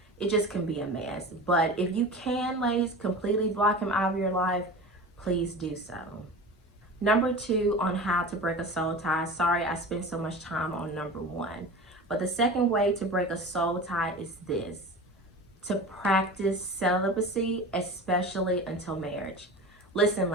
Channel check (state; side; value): normal; both; correlation 0.33